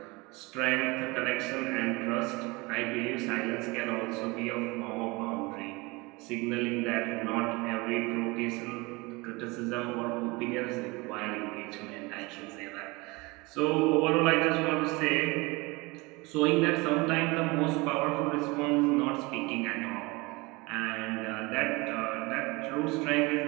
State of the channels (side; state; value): left; quieter; 24.8 dB